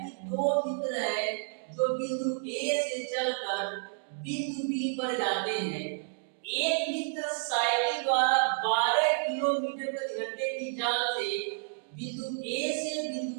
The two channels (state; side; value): silent; left; digital silence